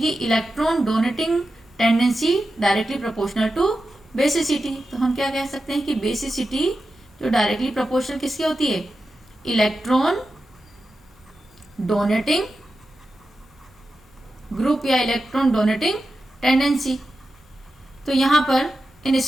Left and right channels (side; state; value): both; normal; correlation 0.91